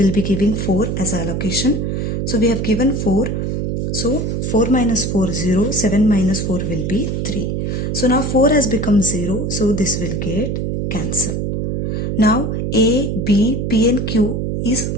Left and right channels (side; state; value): right; noise; hum, 1 dB below the sound